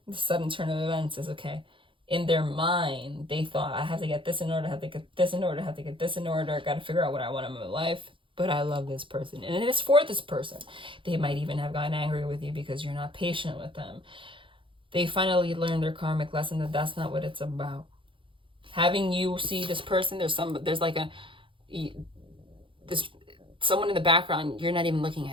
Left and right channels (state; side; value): late; left; 0.25 ms